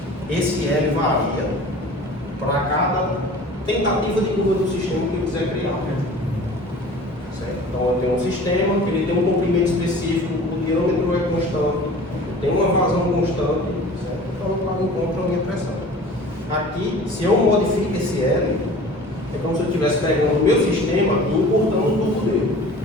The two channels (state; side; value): normal; both; correlation 0.43